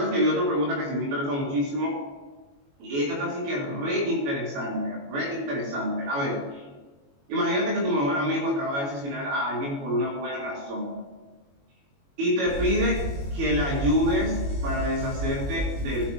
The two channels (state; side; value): late; left; 21 ms